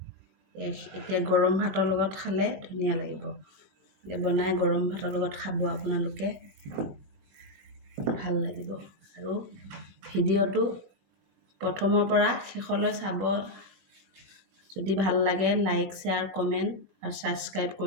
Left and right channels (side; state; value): left; late; 21 ms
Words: এতিয়া গৰম ভাতৰ লগত খালে ধুনীয়া লাগিব। বনাই গৰম ভাতৰ লগত খাব আপোনালোকে, ভাল লাগিব। আৰু ভিডিঅ'টো প্ৰথমৰ পৰা শেষলৈ চাব। যদি ভাল লাগে লাইক, শ্বেয়াৰ, কমেণ্ট আৰু ছাবস্ক্ৰাইব